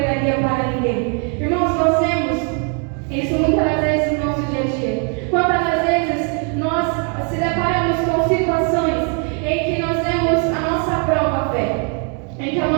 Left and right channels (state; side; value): quieter; left; 39.5 dB